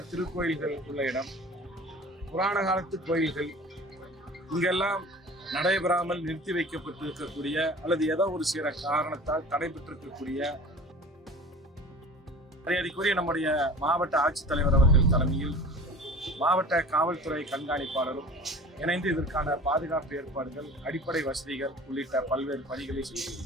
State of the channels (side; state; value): both; normal; correlation 0.41